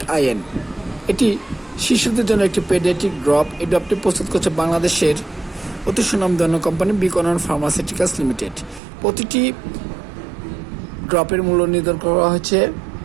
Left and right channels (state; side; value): drops out; left; at 8.8 s